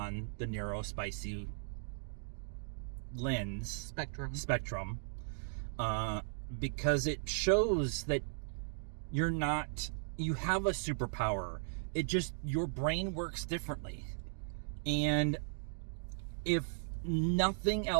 the neurospicy spectrum, because it shows that you have a superpower. It just, your brain works differently. And if nothing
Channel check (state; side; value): silent; left; digital silence